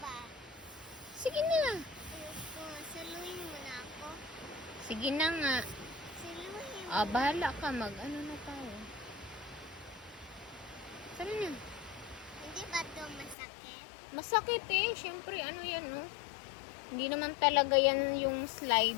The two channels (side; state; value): right; drops out; at 13.4 s